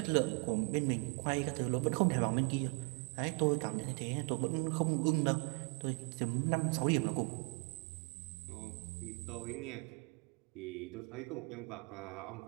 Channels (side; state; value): left; quieter; 33.3 dB